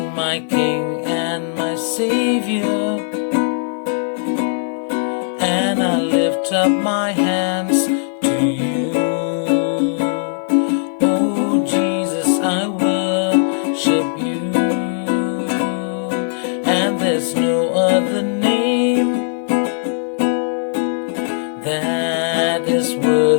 my King and my Savior. And I'll lift up my hands to you. Oh Jesus, I worship you. And there's no other name that is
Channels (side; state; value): right; silent; digital silence